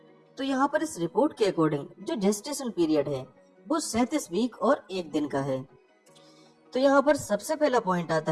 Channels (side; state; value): both; identical; correlation 1.00